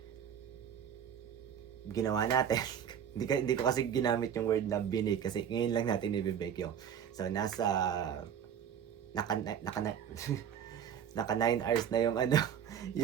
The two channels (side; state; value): left; quieter; 8.7 dB